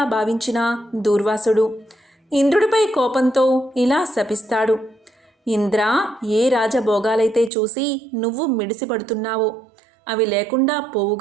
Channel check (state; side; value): drops out; left; at 7.5 s